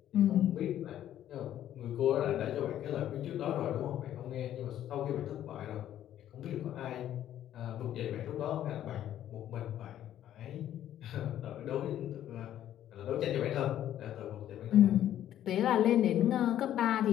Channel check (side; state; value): right; quieter; 11.6 dB